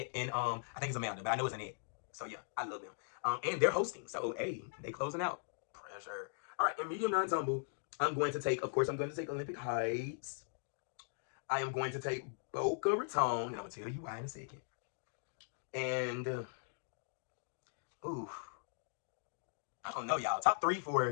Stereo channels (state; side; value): silent; right; digital silence